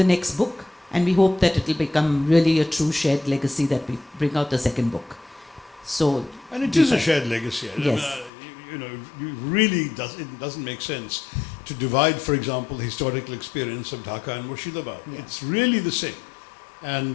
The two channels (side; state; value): right; drops out; at 8.3 s